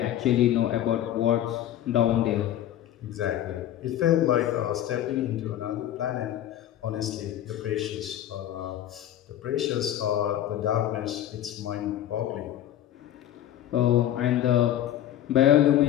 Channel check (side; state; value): right; quieter; 11.9 dB